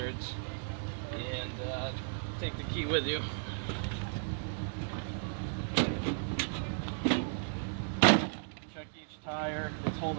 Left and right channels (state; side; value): silent; left; digital silence